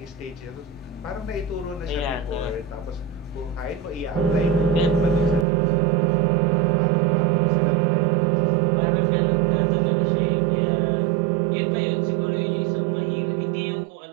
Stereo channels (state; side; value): drops out; left; at 5.5 s